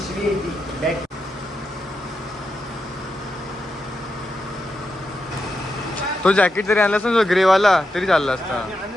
तो जॅकेट जरी आणला असता ग्रेवाला तरी चालला असता.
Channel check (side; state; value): both; normal; correlation 0.86